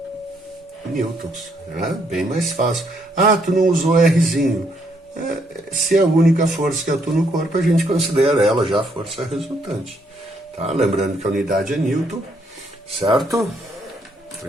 newtons. Né? Bem mais fácil. Ah, tu não usou Rzinho. Se é a única força que atua no corpo, a gente considera ela já a força resultante. Tá? Lembrando que a unidade é newton, certo?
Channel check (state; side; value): normal; both; correlation 0.72